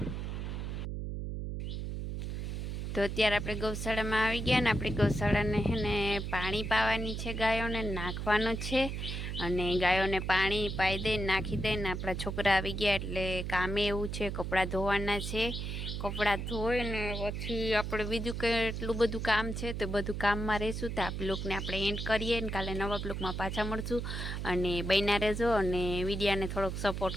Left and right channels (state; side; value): noise; right; hum, 4 dB below the sound